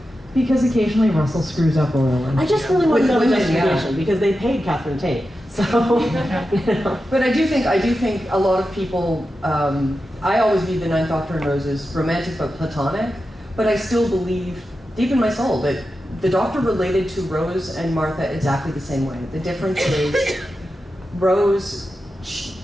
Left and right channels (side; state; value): both; normal; correlation 0.91